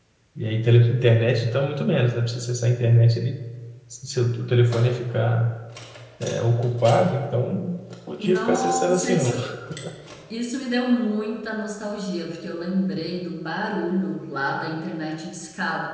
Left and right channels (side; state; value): both; identical; correlation 1.00